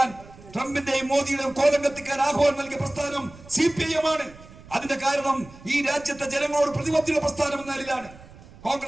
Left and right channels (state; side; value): noise; right; rumble, 20 dB below the sound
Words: ട്രംപിന്റെയും മോദിയുടെയും കോലം കത്തിക്കാൻ ആഹ്വാനം നൽകിയ പ്രസ്ഥാനം CPIM ആണ്. അതിന്റെ കാരണം ഈ രാജ്യത്തെ ജനങ്ങളോട് പ്രതിബദ്ധത പ്രസ്ഥാനം എന്ന നിലയിലാണ്.